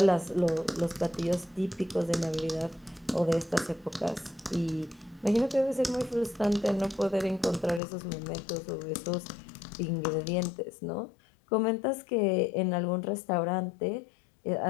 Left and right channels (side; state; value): right; drops out; at 7.8 s